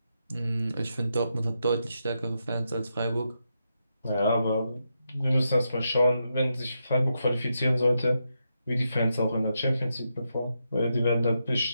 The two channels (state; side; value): inverted; both; correlation -0.84